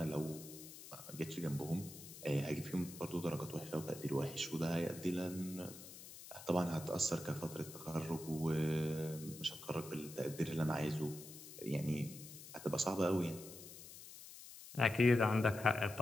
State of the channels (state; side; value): noise; left; hiss, 14 dB below the sound